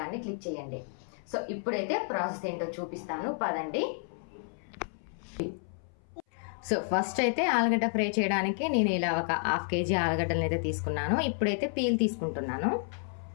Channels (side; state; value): right; silent; 57 dB below the other